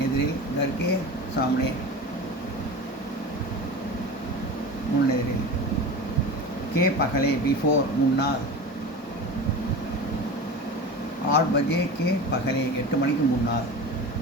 எதிரில். கர் கே சாம்னே முன் எதிரில். கே பகலே பிஃபோர் முன்னால். 8 பஜே கே பகலே 8 மணிக்கு முன்னால்.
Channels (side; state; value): both; normal; correlation 0.31